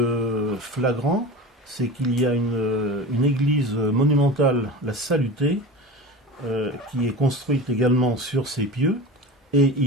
flagrant, c'est qu'il y a une église monumentale, la Salutée, qui est construite également sur ces pieux. Et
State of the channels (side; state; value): both; normal; correlation 0.32